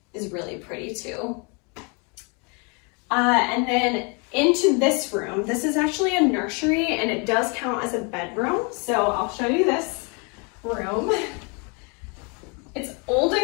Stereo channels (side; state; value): right; quieter; 33.3 dB